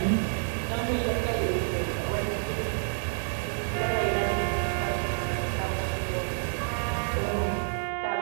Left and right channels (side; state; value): left; silent; digital silence